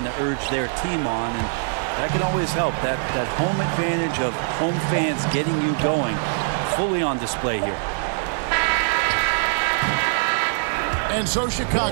to urge their team on, and that can always help. That home advantage of home fans getting you going, fully on display here. And so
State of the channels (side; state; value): left; silent; 57 dB below the other